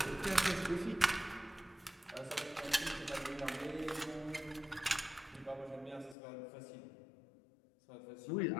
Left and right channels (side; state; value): right; drops out; at 6.2 s